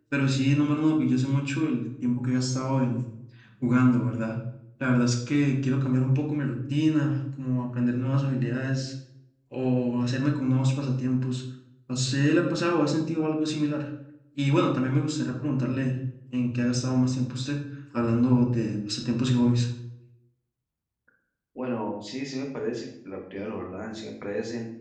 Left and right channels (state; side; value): identical; both; correlation 1.00